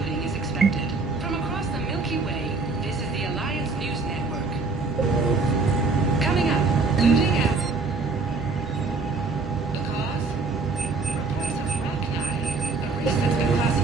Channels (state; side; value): quieter; left; 4.1 dB